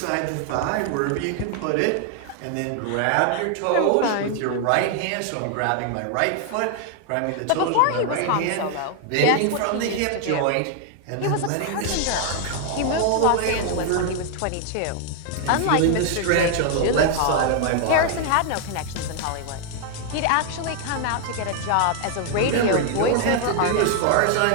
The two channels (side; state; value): both; different; correlation 0.00